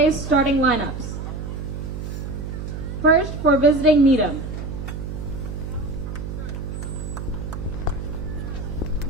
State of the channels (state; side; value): noise; right; hum, 6 dB below the sound